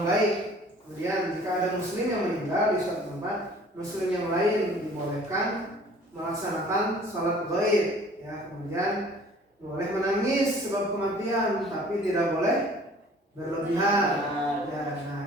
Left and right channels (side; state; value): both; normal; correlation 0.51